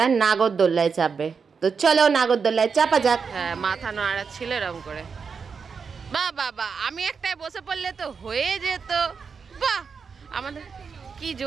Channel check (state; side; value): quieter; left; 5.7 dB